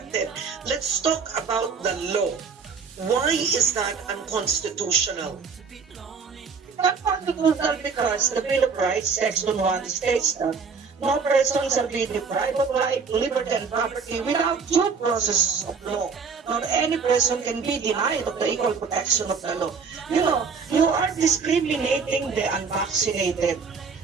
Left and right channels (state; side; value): quieter; left; 5.4 dB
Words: Let's talk about the law. Why is that unconstitutional? Unconstitutional because the Bill of Rights, Section 1, states that no person shall be deprived of life, liberty, and property without due process of law, nor any person can be denied of the equal protection of the law. You know, you are discriminating the unvaccinated.